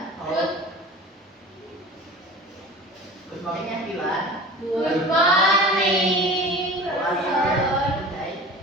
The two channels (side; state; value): both; normal; correlation 0.38